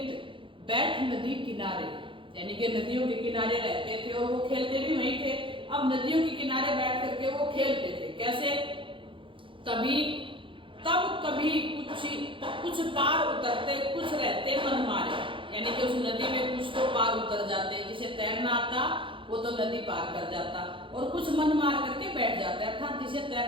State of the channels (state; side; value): late; left; 0.25 ms